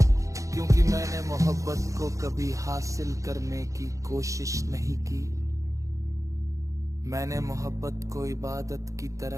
क्योंकि मैंने मोहब्बत को कभी हासिल करने की कोशिश नहीं की। मैंने मोहब्बत को इबादत की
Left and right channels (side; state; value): left; late; 0.15 ms